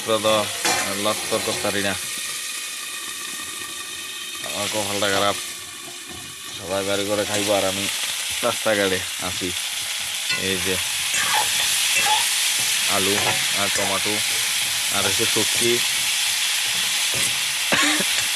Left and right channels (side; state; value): both; identical; correlation 1.00